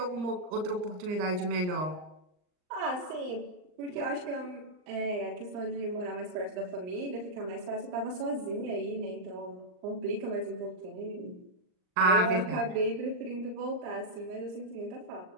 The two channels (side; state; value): left; late; 39 ms